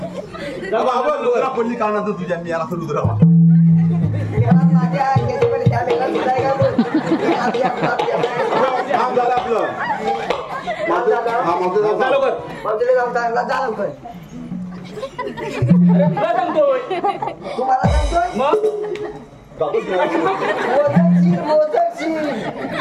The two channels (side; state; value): both; identical; correlation 1.00